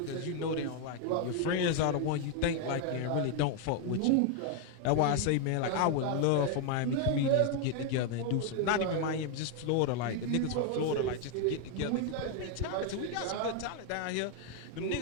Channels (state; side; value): different; both; correlation 0.01